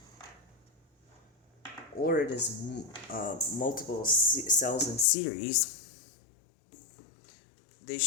or it is multiple cells in series, they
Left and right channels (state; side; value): drops out; right; at 5.1 s